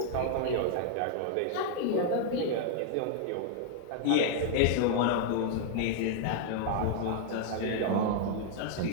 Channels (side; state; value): both; different; correlation 0.00